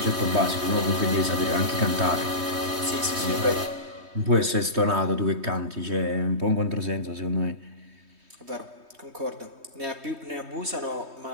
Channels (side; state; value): left; late; 3.2 ms